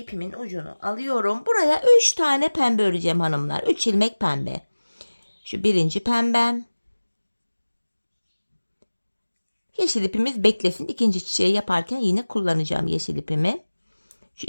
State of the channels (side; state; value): both; inverted; correlation -1.00